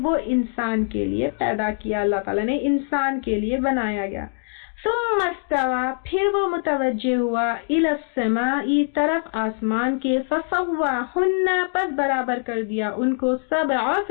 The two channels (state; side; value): silent; right; digital silence